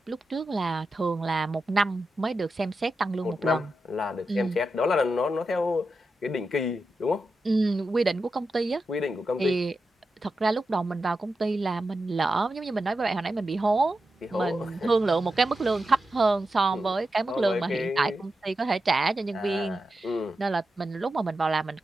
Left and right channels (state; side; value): normal; both; correlation 0.90